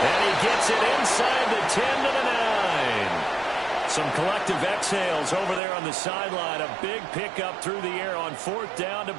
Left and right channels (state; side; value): drops out; left; at 5.6 s